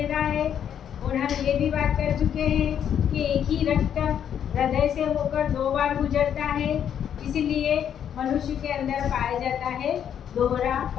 रहा है। और हम ये भी बात कर चुके हैं कि एक ही रक्त हृदय से होकर 2 बार गुजरता है, इसलिए मनुष्य के अंदर पाया जाता है दोहरा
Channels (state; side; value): quieter; right; 9.1 dB